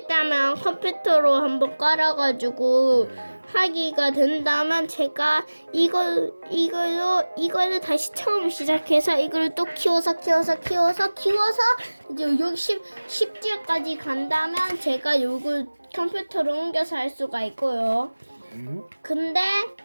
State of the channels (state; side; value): inverted; both; correlation -1.00